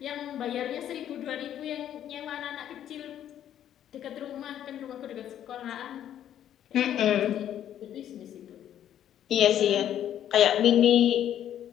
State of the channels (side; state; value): right; quieter; 10.7 dB